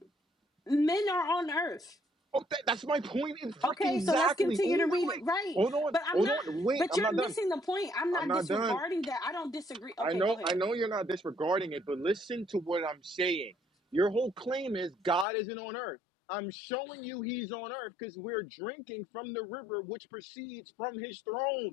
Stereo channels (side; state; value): right; drops out; at 15.2 s